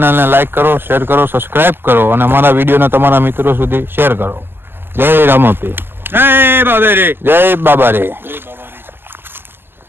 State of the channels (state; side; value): late; left; 0.10 ms